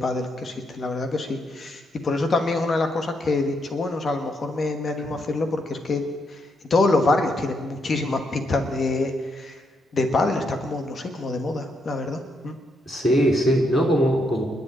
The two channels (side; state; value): both; normal; correlation 0.78